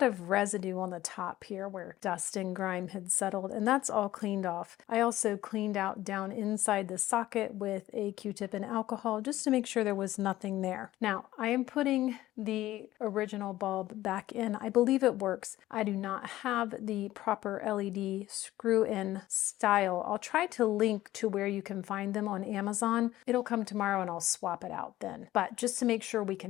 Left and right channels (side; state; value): right; quieter; 15.2 dB